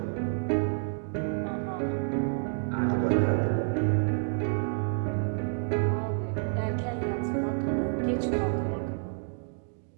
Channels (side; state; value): left; silent; digital silence